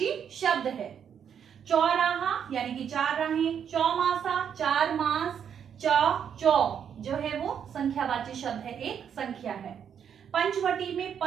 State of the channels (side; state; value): left; quieter; 8.2 dB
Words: शब्द है। चौराहा यानी कि चार राहें, चौमासा चार मास, चौ जो है वो संख्यावाची शब्द है, एक संख्या है। पंचवटी में